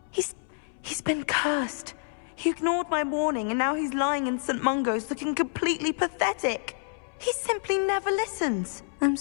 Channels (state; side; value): silent; right; 59 dB below the other